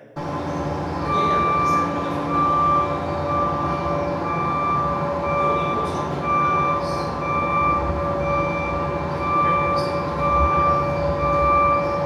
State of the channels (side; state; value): both; identical; correlation 1.00